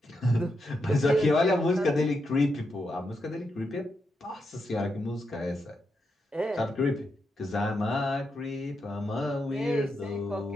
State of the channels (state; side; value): normal; both; correlation 0.84